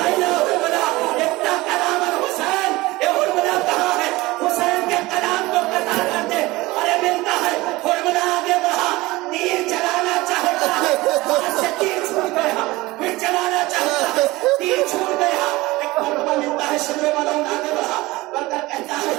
आईना हुरमला, इतना कलाम हुसैन, ये हुरमला कहाँ है? हुसैन के कलाम को कतार करते, अरे मिलता है। हुरमला आगे बढ़ा, तीर चलाना चाहता है, हाथ से तीर छूट गया, फिर चलाना चाहता है, तीर छूट गया। एक मौका मिलता है, शिमरे वालों आगे बढ़ा, बढ़कर कहता है,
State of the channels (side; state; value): left; quieter; 20.4 dB